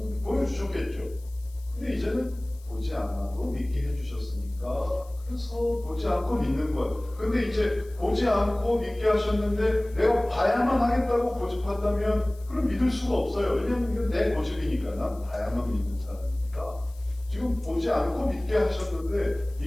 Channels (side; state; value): left; noise; hiss, 26 dB below the sound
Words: 보여주셨겠죠. 근데 이제는 보지 않아도 믿게 해주셨으니까 그래서 보지 않고 믿는 거예요. 근데 이제 보지 않고 믿게 하셨는데 내가 봐야만 하겠다고 고집한다면 그럼 믿을 수가 없어요. 왜냐하면 이건 내 고집이니까. 난 봐야만 믿는 사람이니까. 지금 보지 않고 믿게 하셨는데